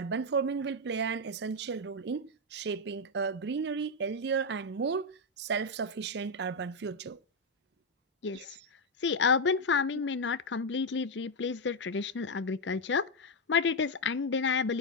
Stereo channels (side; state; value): both; normal; correlation 0.03